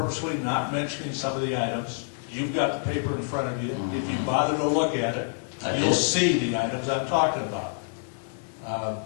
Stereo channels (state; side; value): silent; right; digital silence